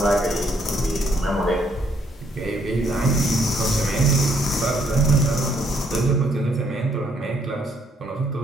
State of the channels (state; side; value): normal; both; correlation 0.69